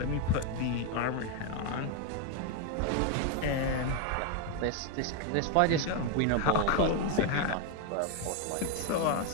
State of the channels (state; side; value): different; both; correlation 0.01